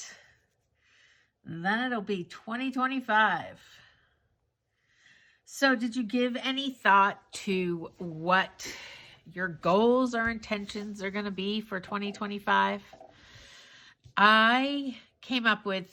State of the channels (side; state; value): both; identical; correlation 1.00